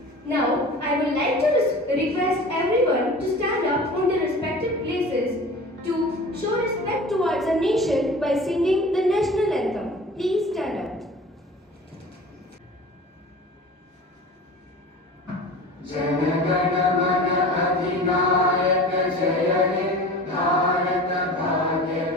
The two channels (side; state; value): both; normal; correlation 0.38